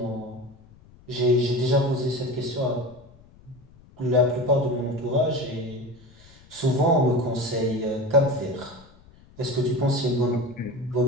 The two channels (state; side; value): noise; left; rumble, 25 dB below the sound